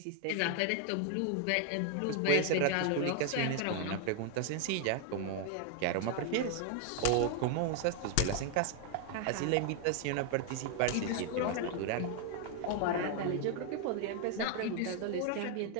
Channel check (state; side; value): different; both; correlation 0.00